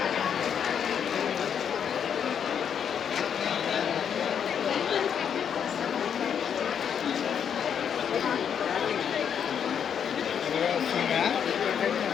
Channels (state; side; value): quieter; right; 8.0 dB